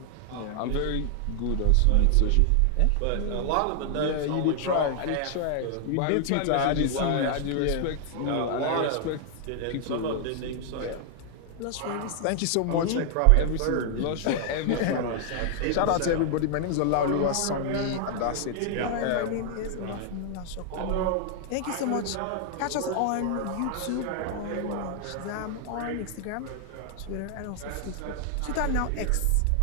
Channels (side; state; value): both; different; correlation 0.00